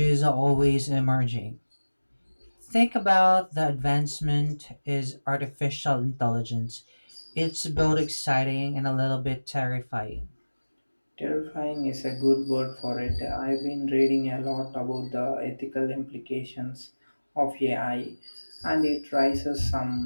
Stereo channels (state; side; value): inverted; both; correlation -1.00